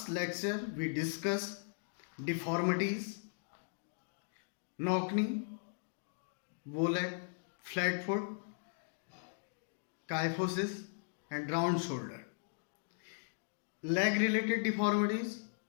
lecture we discussed deformities, knock-knee, bow-leg, flat foot, kyphosis, and round shoulder. Leg-related deformities,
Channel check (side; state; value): right; silent; digital silence